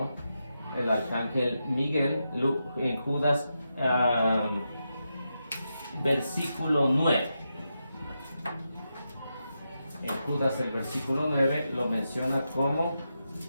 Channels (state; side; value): inverted; both; correlation -0.87